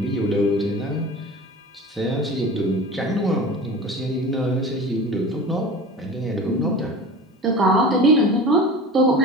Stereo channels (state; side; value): normal; both; correlation 0.36